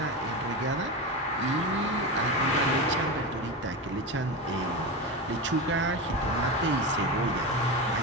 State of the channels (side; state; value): both; normal; correlation 0.20